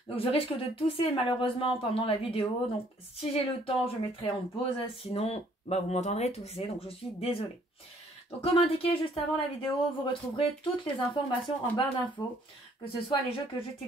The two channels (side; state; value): both; normal; correlation 0.62